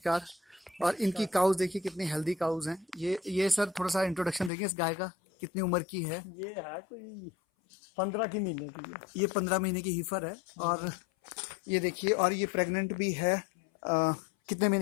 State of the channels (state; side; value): drops out; right; at 4.5 s